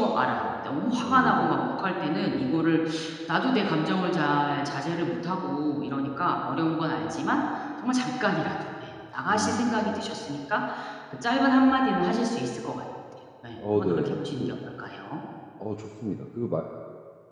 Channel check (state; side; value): identical; both; correlation 1.00